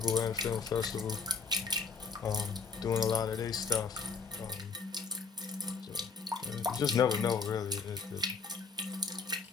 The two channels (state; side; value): quieter; right; 5.1 dB